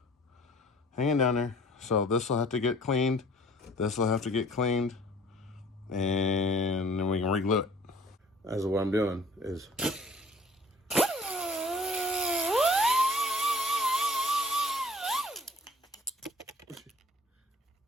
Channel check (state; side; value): normal; both; correlation 0.51